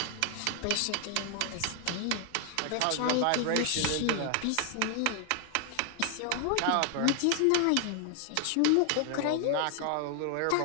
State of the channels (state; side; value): different; both; correlation 0.00